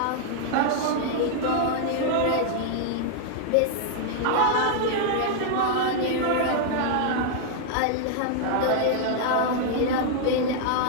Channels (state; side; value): different; both; correlation -0.01